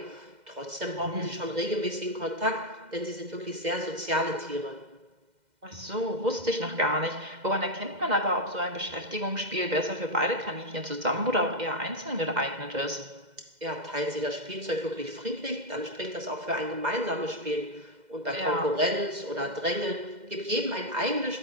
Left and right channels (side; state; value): left; late; 2.0 ms